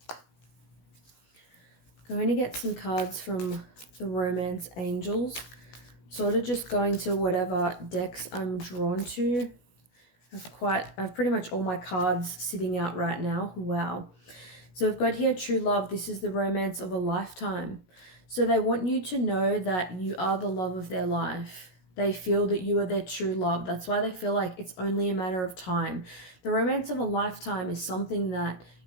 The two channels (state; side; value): late; right; 16 ms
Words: Going to get some cards from the Romance Angels. Sort of just going to whatever decks I'm drawn to. I've pretty much all my cards sitting out right now. Wow. So we've got here true love. This is the romance of a lifetime. So they want you to know that you are the love of their life. They feel that you are their true love. That's why they feel like it's only a matter of time. The romance of a lifetime is something that